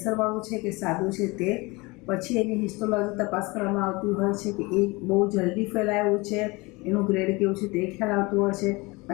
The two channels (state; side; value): quieter; right; 24.7 dB